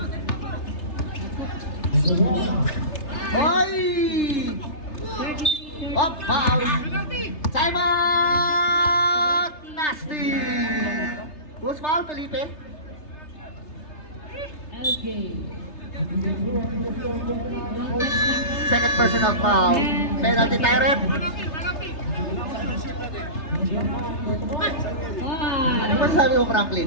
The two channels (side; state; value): right; late; 3.3 ms